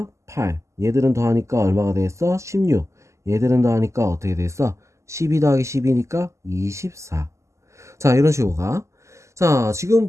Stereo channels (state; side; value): late; left; 0.14 ms